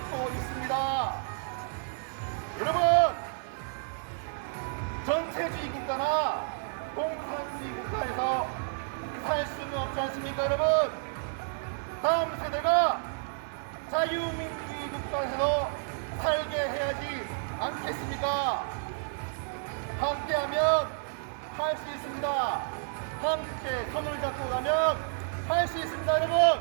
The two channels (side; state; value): left; silent; digital silence